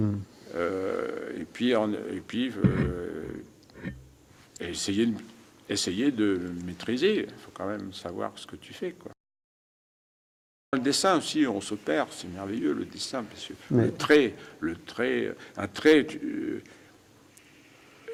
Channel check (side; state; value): both; identical; correlation 1.00